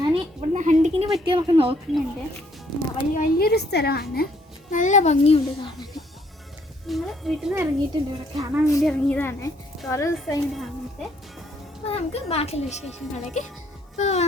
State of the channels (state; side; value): normal; both; correlation 0.66